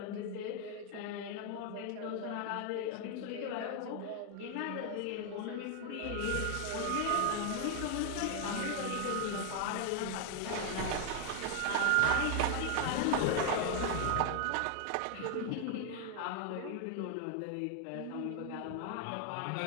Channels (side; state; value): both; different; correlation 0.00